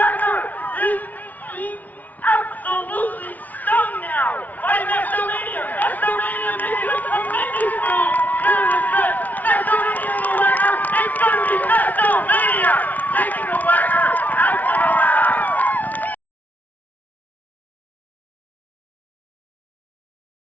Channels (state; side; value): late; right; 0.076 ms